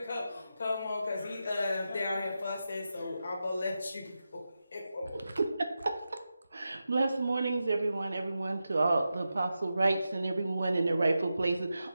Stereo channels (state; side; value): inverted; both; correlation -0.90